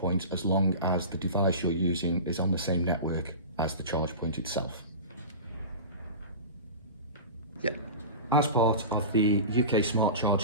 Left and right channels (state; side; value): inverted; both; correlation -0.31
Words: as long as the device you're using is on the same network as the charge point itself. Yep. As part of the UK smart